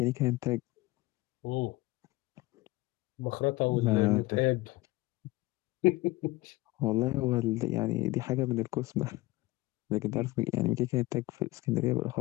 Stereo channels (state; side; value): quieter; right; 20.2 dB